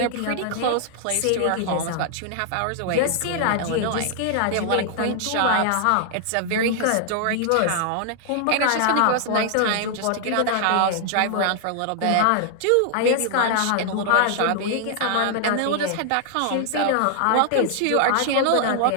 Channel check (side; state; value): both; different; correlation 0.00